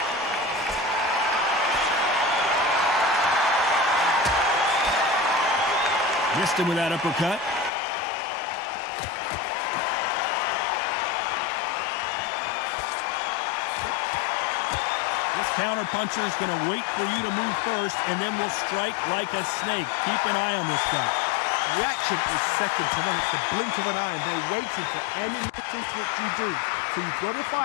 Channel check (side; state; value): right; drops out; at 7.7 s